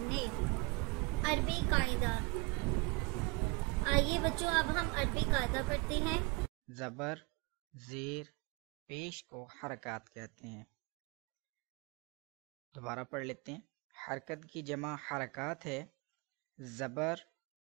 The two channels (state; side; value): quieter; left; 28.0 dB